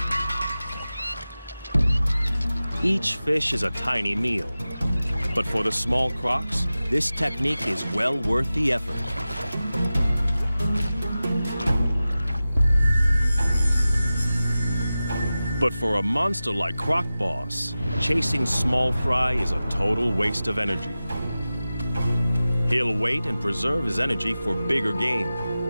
Each fish is a tiny meal, but for the small crocs, this technique is well worth the effort. But for a monster like Croc Boss, chasing small fry is a total waste of energy. He'll wait and preserve his energy for bigger game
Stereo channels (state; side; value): inverted; both; correlation -0.95